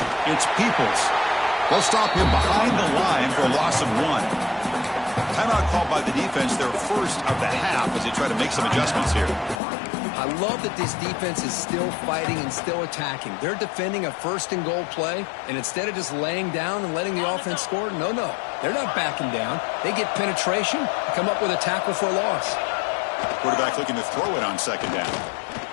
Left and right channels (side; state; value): right; drops out; at 9.6 s